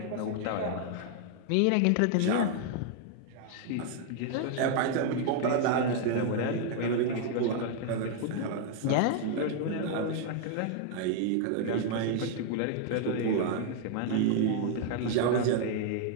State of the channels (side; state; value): both; different; correlation 0.00